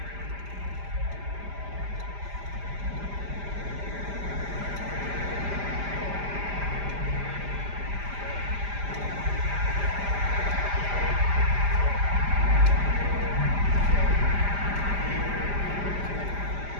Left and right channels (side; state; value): left; late; 5.0 ms